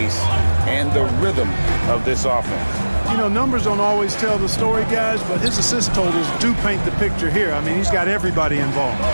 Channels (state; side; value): inverted; both; correlation -1.00